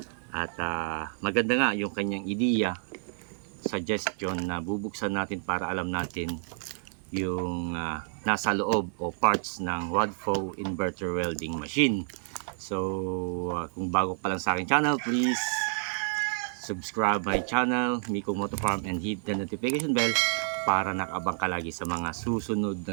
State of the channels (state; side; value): silent; left; digital silence